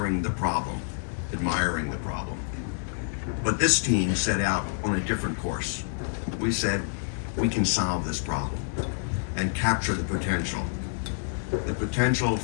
the problem. Admiring the problem. But this team set out on a different course. We said, we can solve this problem and capture the potential. The potential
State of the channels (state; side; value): silent; right; 60 dB below the other